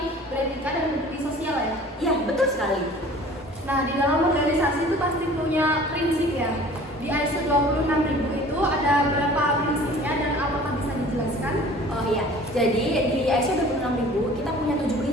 beretika dan berdiri sosial ya? Iya, betul sekali. Nah, di dalam organisasi itu pasti punya prinsip ya. Di ISO 26000 itu ada berapa prinsipnya dan apakah bisa dijelaskan? Oh iya, jadi di ISO 26000 kita punya 7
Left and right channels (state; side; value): normal; both; correlation 0.47